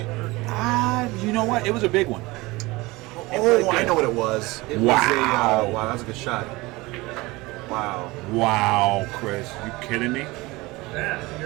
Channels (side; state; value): left; quieter; 21.8 dB